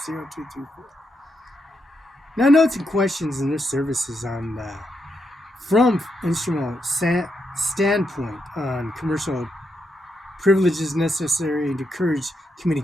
Now, notes and questions in their services on from instrumental standpoint on commercial privileges necessary to encourage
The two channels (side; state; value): both; normal; correlation 0.82